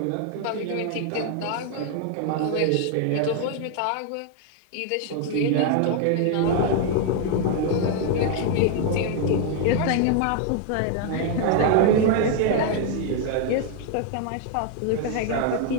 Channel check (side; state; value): both; different; correlation 0.00